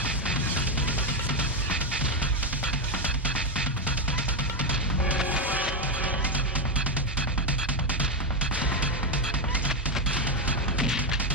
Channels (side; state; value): both; normal; correlation 0.07